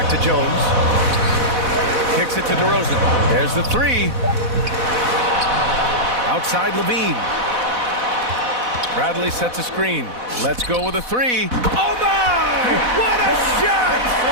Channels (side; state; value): left; late; 4.1 ms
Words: to Jones. Kicks it to DeRozan. There's the 3. Outside Levine. Bradley sets a screen. Let's go with a 3. Oh my! What a shot!